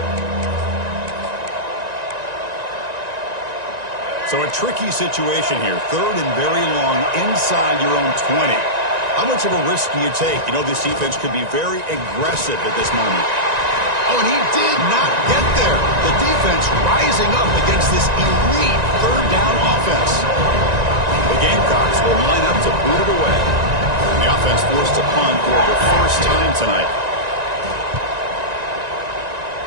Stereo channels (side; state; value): left; late; 1.9 ms